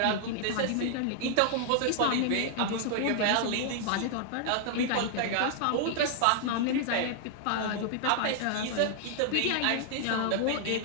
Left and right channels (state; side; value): different; both; correlation 0.00